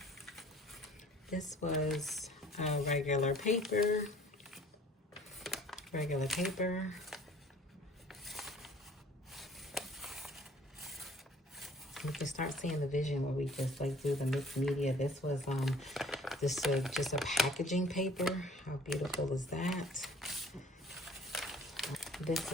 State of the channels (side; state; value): both; normal; correlation 0.53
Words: This was regular paper. You can start seeing the vision where we just like do the mixed media. This was just a packaging paper. How beautiful is that? This